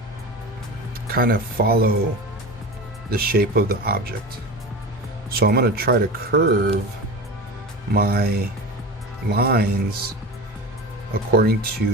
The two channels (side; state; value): both; normal; correlation 0.30